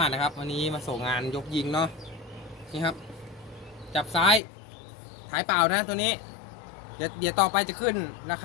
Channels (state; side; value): drops out; right; at 4.4 s